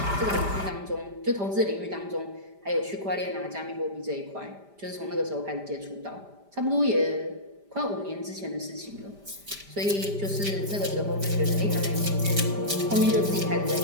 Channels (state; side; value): late; left; 5.0 ms